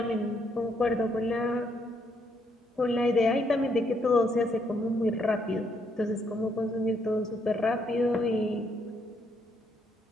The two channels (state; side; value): normal; both; correlation 0.73